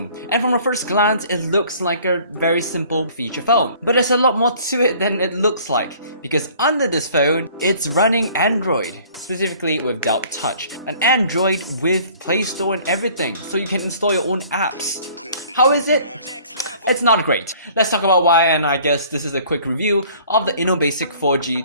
and from a first glance it looks like a very simple feature phone. But there's a lot more to it than it looks like, because under this phone, it's running Android, specifically without touch. An Android with Play Store and everything, so you can install your own apps. How is it? It's not great. Let's talk about why, and I guess this is a quick review of the InnoBasic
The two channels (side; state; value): both; inverted; correlation -0.53